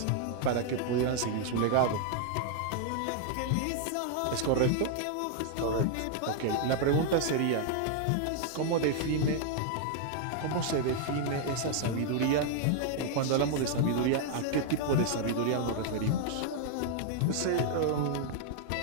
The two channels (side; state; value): both; different; correlation 0.00